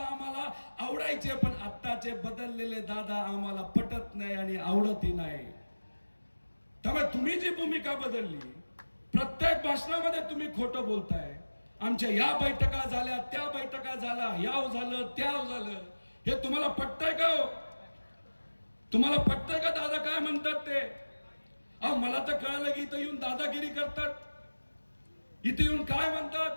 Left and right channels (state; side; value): inverted; both; correlation -1.00